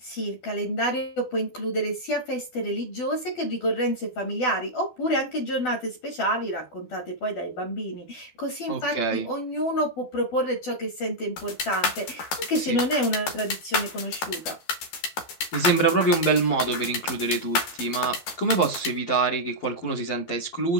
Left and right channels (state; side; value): late; right; 12 ms